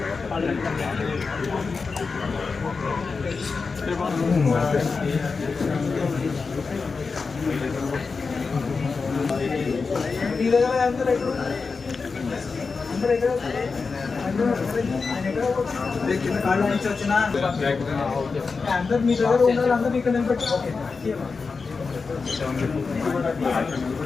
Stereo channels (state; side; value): quieter; right; 4.6 dB